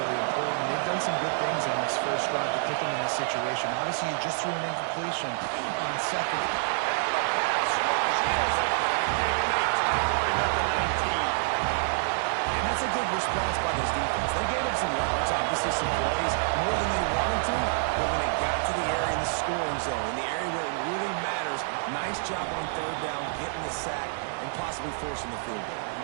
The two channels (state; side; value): silent; left; digital silence